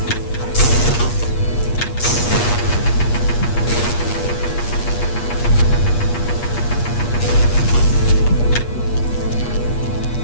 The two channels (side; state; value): right; late; 8.4 ms